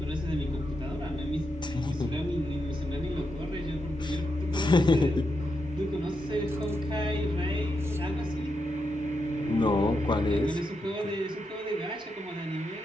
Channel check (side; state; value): both; normal; correlation 0.84